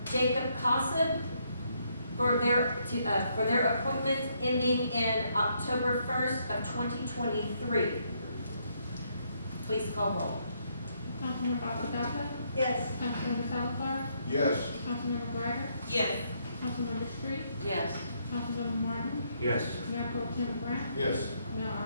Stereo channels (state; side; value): inverted; both; correlation -0.73